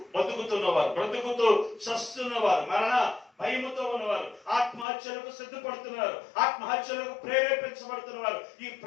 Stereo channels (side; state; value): right; drops out; at 4.9 s